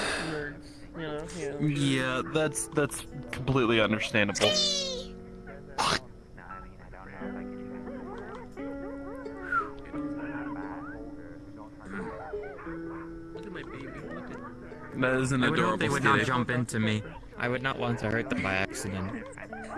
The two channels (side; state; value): both; identical; correlation 1.00